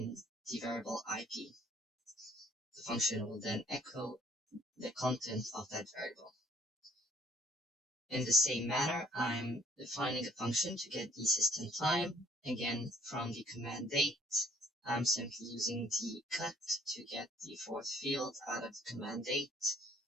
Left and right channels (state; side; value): normal; both; correlation 0.62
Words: the variable IP. The function will then echo the content of that variable. In the same manner, I'm defining a function to get the system time. Again, from the command date, I'm simply using the cut to get the fourth field out of the command date.